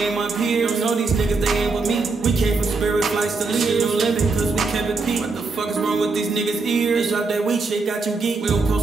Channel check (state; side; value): quieter; left; 4.0 dB